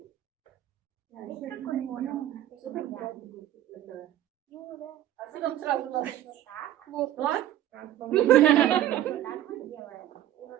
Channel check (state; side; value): quieter; left; 12.6 dB